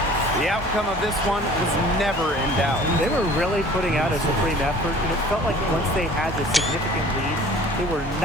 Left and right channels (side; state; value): both; normal; correlation 0.48